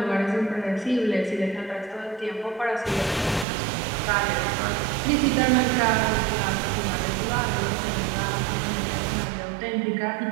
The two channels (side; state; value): left; drops out; at 3.5 s